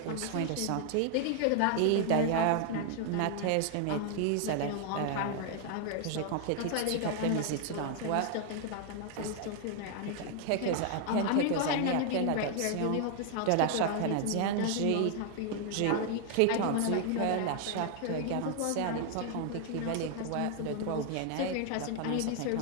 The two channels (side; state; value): both; different; correlation 0.00